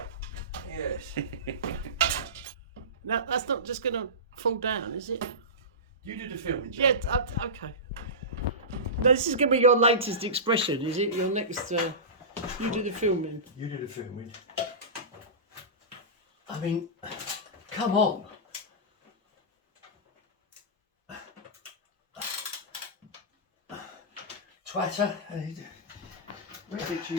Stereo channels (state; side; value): normal; both; correlation -0.20